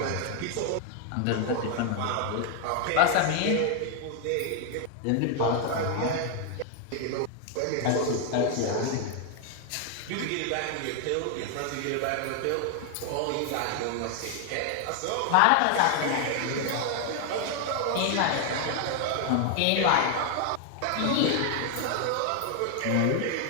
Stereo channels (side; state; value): both; different; correlation 0.00